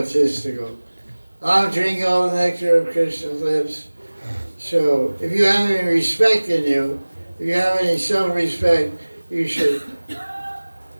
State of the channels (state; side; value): inverted; both; correlation -1.00